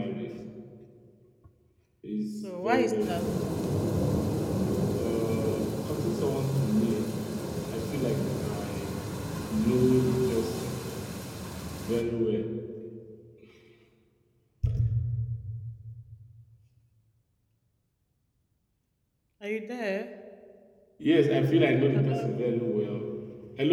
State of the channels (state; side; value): identical; both; correlation 1.00